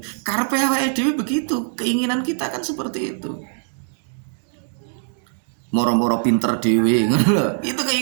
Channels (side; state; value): left; silent; 60 dB below the other